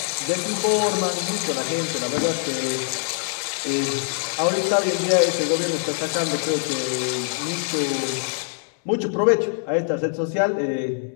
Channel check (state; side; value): silent; right; 63 dB below the other